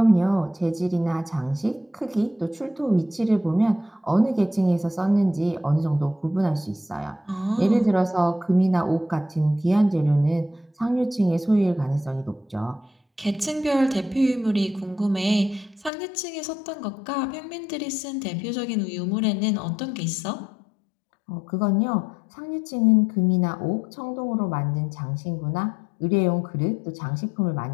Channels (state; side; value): drops out; right; at 15.9 s